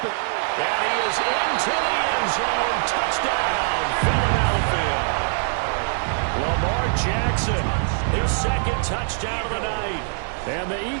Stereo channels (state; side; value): silent; left; 59 dB below the other